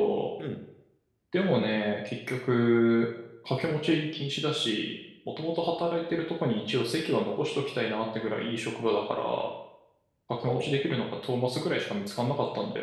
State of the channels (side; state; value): both; identical; correlation 1.00